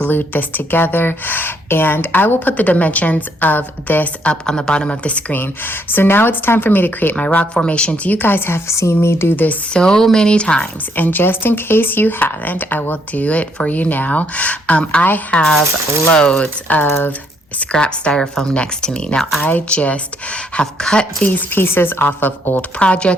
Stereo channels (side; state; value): both; normal; correlation 0.71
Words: this together, and I will put the dimensions of this up on the bottom of the screen. So now it's time for me to create my rock formations. You guys have seen me do this so many times, and just in case you haven't, I will do it for you now. I have loads of scrap styrofoam next to me. Now I just have cut these pieces off of old